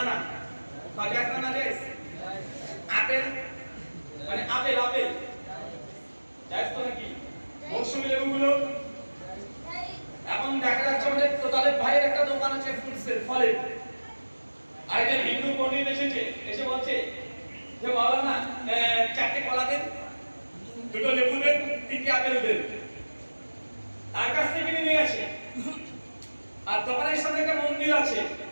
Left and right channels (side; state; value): both; inverted; correlation -1.00